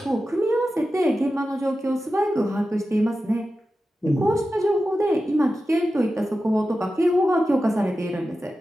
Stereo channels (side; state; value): both; normal; correlation 0.92